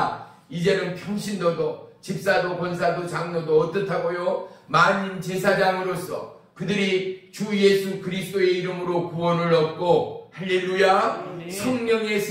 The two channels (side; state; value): both; identical; correlation 1.00